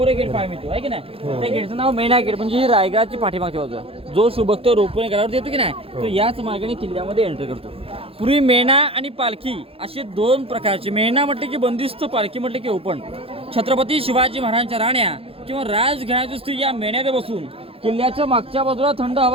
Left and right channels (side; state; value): left; late; 0.27 ms